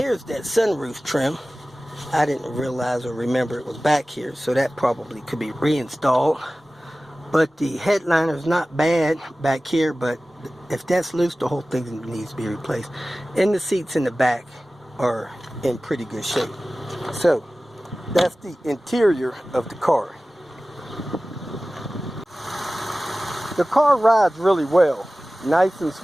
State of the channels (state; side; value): normal; both; correlation 0.97